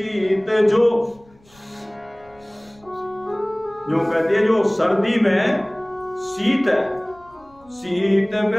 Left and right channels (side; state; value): left; noise; rumble, 29 dB below the sound